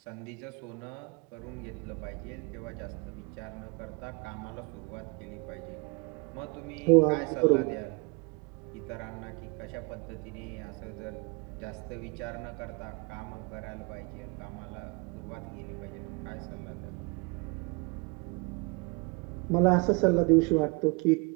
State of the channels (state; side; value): quieter; left; 29.7 dB